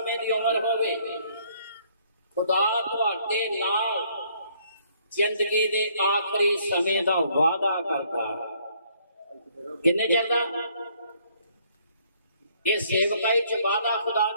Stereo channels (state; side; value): inverted; both; correlation -0.65